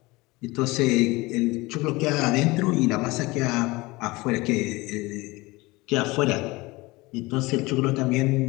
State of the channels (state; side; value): quieter; right; 22.3 dB